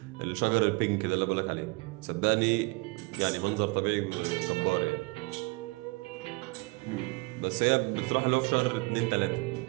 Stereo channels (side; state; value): left; quieter; 26.5 dB